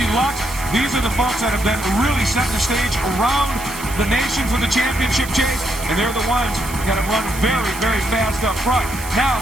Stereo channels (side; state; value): right; noise; hiss, 12 dB below the sound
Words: Lux. These are the folks that have been really setting the stage around the nation for the championship chase, and they're the ones that have run very, very fast up front. Now,